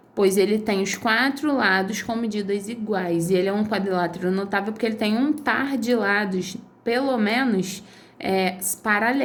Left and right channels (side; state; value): both; identical; correlation 1.00